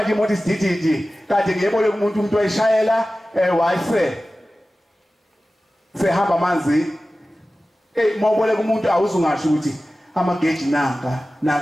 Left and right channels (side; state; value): both; normal; correlation 0.96